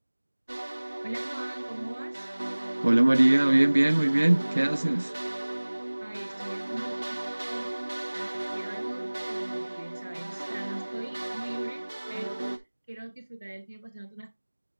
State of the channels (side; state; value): both; inverted; correlation -1.00